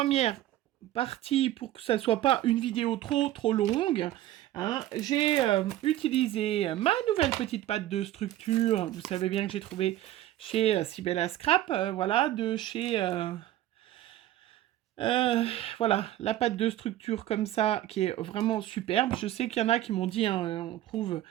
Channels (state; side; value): quieter; left; 13.9 dB